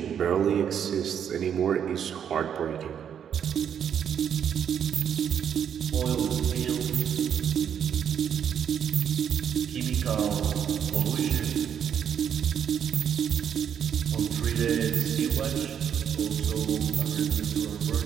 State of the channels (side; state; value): left; quieter; 8.5 dB